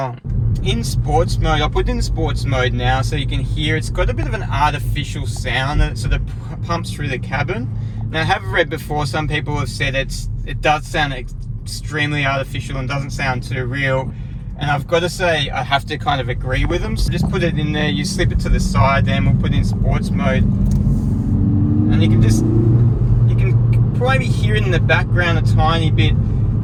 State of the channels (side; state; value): both; identical; correlation 1.00